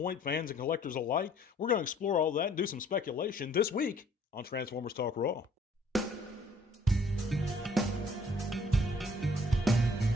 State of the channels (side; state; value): both; normal; correlation 0.59